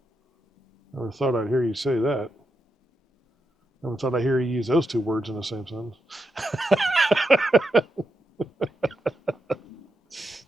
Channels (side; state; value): both; normal; correlation 0.85